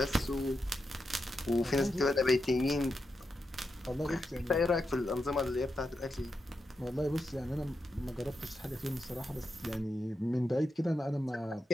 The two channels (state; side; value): normal; both; correlation 0.86